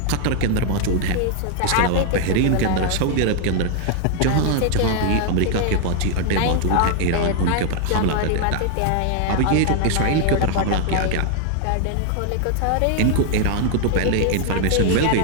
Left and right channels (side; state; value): both; different; correlation 0.00